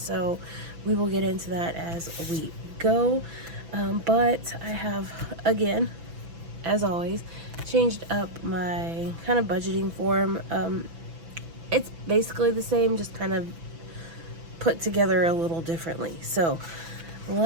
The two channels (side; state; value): left; late; 6.1 ms